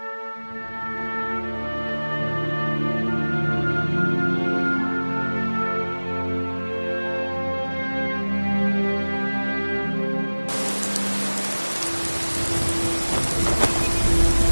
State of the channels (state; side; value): inverted; both; correlation -1.00